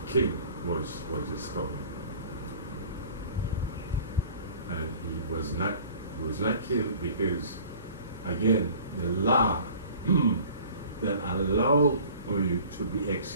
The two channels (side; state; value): both; inverted; correlation -0.47